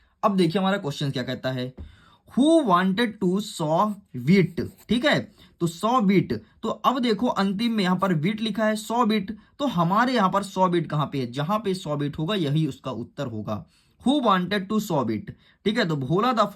अब देखिए हमारा क्वेश्चन क्या कहता है, who wanted to saw wheat. ठीक है, तो 100 बीट, तो अब देखो अंतिम में यहां पर बीट लिखा है 100 बीट, तो हमारे यहां पर 100 बीट कहां पे है, जहां पे 100 बीट होगा यही उसका उत्तर होगा। Who wanted to 100 beat. ठीक है, तो Bhola the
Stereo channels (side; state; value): both; identical; correlation 1.00